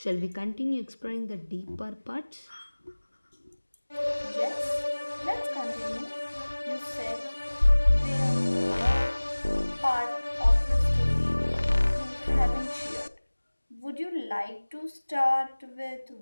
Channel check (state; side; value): inverted; both; correlation -1.00